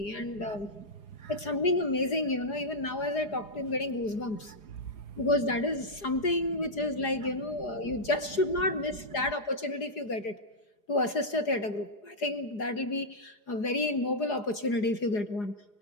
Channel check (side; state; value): right; late; 4.8 ms